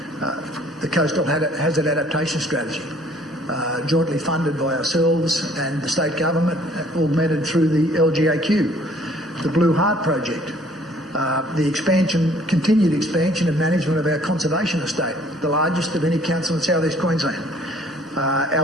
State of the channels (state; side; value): normal; both; correlation 0.58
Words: The Coastal Hazard Adaptation Strategy, jointly funded by ourselves and the state government, augmented through the LGAQ, the Blue Heart Project, the continued expansion and management of our conservation estate, the largest of any council in South East Queensland,